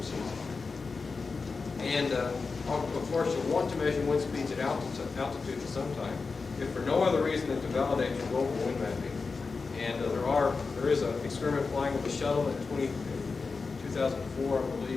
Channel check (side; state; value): right; quieter; 4.5 dB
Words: season. And of course, you'll want to measure wind speeds at altitude at some time, if for no other reason than to validate your global wind mapping. And there is an experiment flying with the shuttle in 2004, I